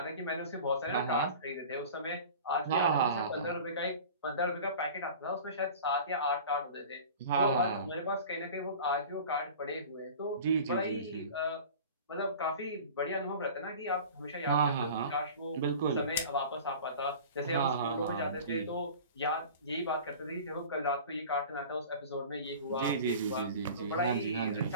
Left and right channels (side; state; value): both; inverted; correlation -0.39